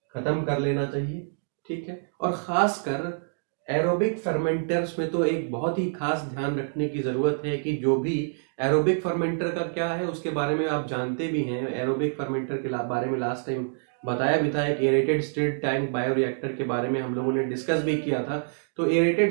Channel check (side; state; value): left; silent; digital silence